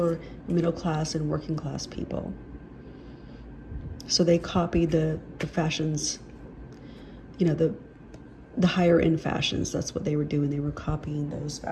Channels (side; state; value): both; identical; correlation 1.00